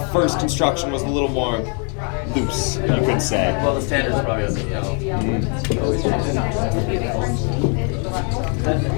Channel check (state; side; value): quieter; right; 39.1 dB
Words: first construction was a little more loose, you could say. Well, the standards probably doesn't know.